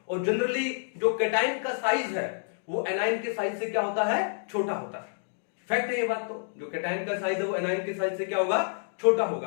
और जनरली जो कैटायन का साइज है वो एनायन के साइज से क्या होता है, छोटा होता है। फैक्ट है ये बात। तो जो कैटायन का साइज है वो एनायन के साइज से क्या होगा, छोटा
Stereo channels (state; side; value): silent; right; digital silence